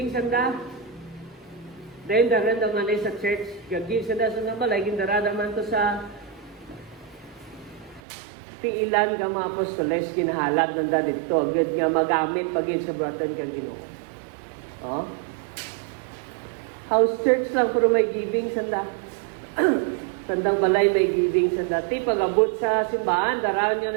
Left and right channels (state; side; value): drops out; left; at 8.0 s